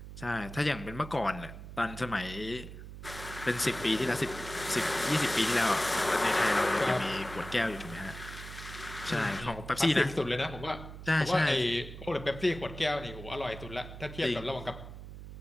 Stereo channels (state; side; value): noise; right; hum, 12 dB below the sound